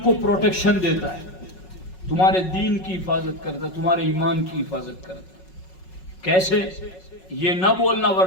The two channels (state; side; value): late; right; 5.4 ms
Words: کو پروٹیکشن دیتا ہے، تمہارے دین کی حفاظت کرتا ہے، تمہارے ایمان کی حفاظت کرتا ہے. کیسے؟ یہ نہ بولنا